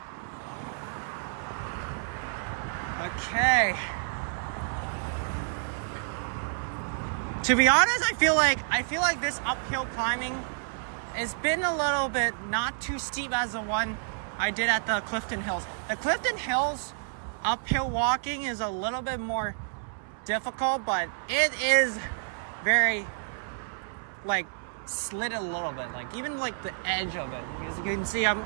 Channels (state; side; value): silent; left; 58 dB below the other